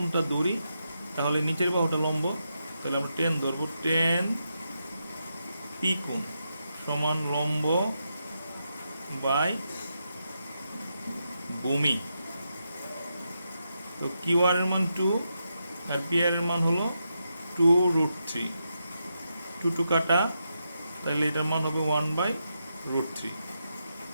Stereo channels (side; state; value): both; inverted; correlation -0.85